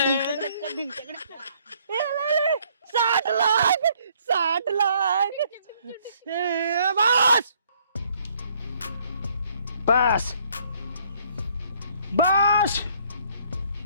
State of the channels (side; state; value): both; inverted; correlation -0.64